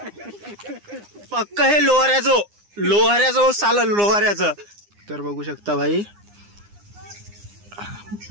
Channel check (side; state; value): left; late; 9.8 ms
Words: पक्क. हे लोहाऱ्याचं चाललं लोहाऱ्याचं. तर बघू शकता भाई